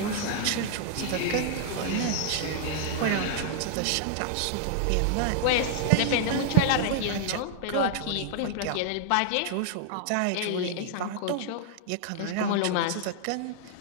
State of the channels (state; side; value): different; both; correlation -0.01